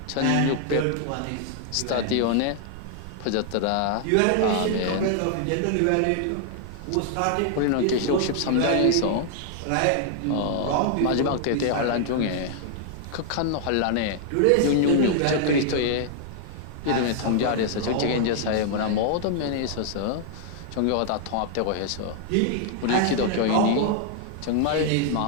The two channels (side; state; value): both; different; correlation -0.01